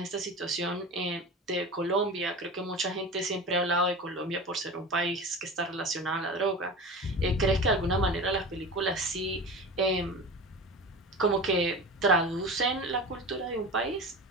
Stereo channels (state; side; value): normal; both; correlation 0.31